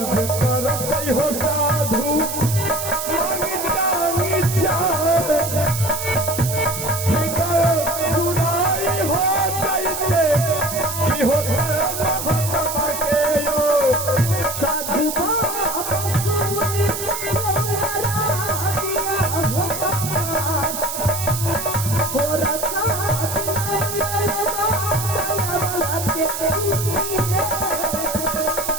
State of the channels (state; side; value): noise; right; hiss, 5 dB below the sound